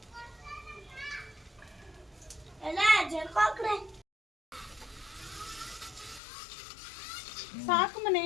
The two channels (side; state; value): right; drops out; at 6.2 s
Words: ಎಲ್ಲ ಜರ್ಕೋಕ್ರೆ ಸಾಕು